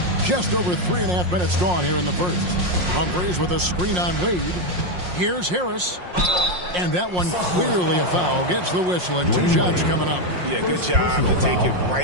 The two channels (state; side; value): late; left; 5.6 ms